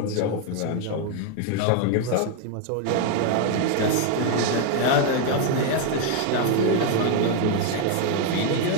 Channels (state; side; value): different; both; correlation 0.01